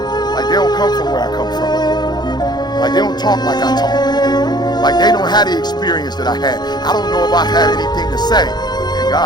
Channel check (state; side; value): late; right; 0.20 ms